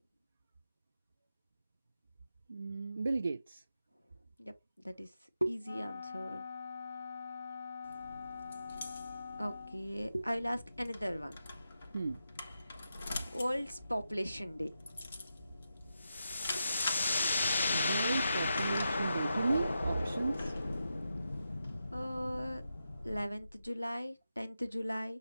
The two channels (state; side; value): inverted; both; correlation -0.88